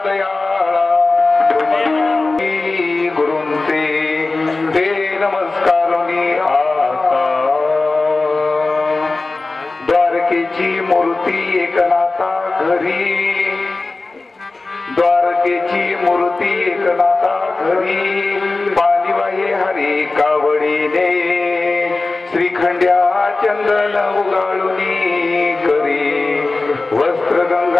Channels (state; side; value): quieter; right; 3.4 dB